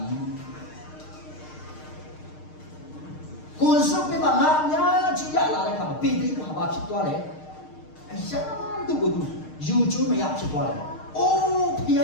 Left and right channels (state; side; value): late; right; 6.5 ms